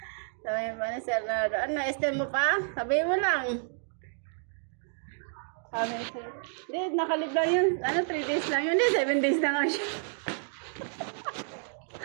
Sabi mo na, Sir Nardo, ano, extend mo pa? Sabi mo lang. Sabi siya, hindi, nakalib lang yun. Ano, 3 days lang yun. Hindi, 7 days na nga siya.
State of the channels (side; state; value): left; silent; 58 dB below the other